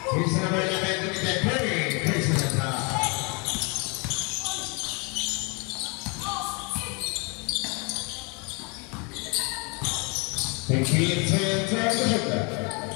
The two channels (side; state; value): right; quieter; 32.7 dB